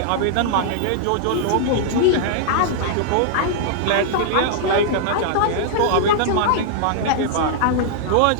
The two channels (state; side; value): different; both; correlation -0.01